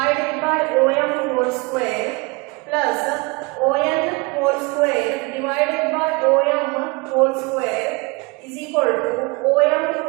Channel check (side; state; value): left; quieter; 27.6 dB